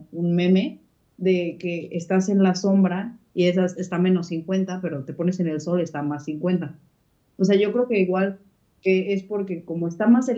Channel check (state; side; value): identical; both; correlation 1.00